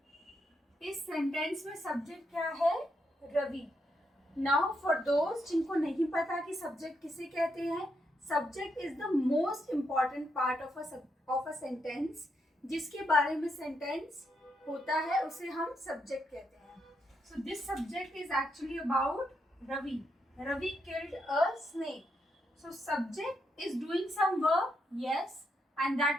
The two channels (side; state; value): both; normal; correlation 0.80